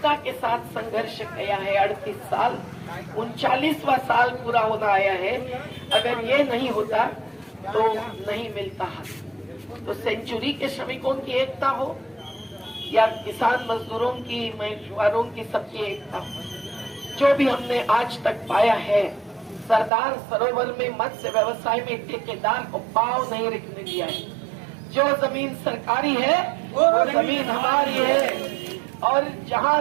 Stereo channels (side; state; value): left; drops out; at 19.9 s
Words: के साथ संघर्ष किया है 38 साल, 39वां साल पूरा होना आया है। अगर ये नहीं होता तो नहीं मिलता हक। तो सेंचुरी के श्रमिकों की एकता हो या किसान मजदूरों की, मछुआरों की, सबकी एकता हो, जो भी हमने आज तक पाया है, सरदार सरोवर में मत्स्य व्यवसाय में ठेकेदार को पांव नहीं रखने दिया है। जो जमीन सरकारी है वो जमीन हमारी है, और जहाँ